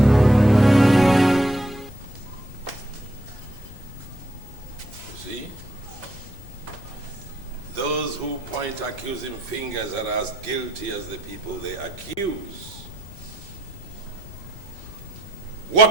Accusing fingers are as guilty as the people they accuse.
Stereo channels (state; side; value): noise; left; rumble, 17 dB below the sound